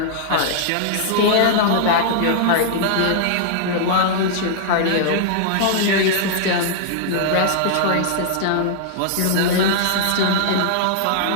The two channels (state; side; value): different; both; correlation -0.01